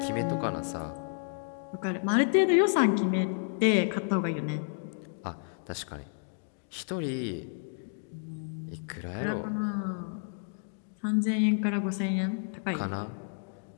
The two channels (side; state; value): right; silent; digital silence